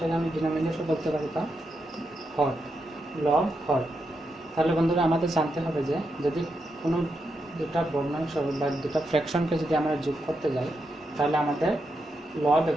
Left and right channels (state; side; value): normal; both; correlation 0.84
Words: আমি ডিনোমিনেটর বলতে পারি, বা হর। লব হর। তাহলে বন্ধুরা, আমাদের জানতে হবে যে যদি কোনো দুটা ভগ্নাংশ বা দুটা ফ্র্যাকশনকে যদি আমরা যোগ করতে যাই, তাহলে আমাদের লব